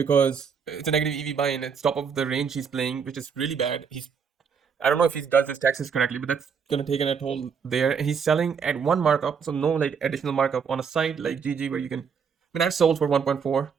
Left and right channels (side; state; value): left; quieter; 6.4 dB